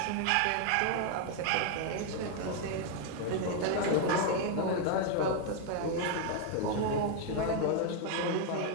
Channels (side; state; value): both; different; correlation 0.00